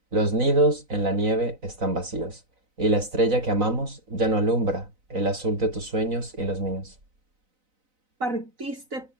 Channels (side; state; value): left; late; 4.0 ms